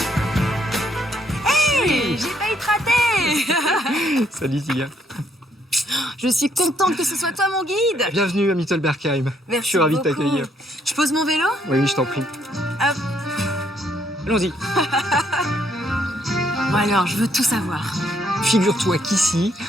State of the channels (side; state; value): both; normal; correlation 0.71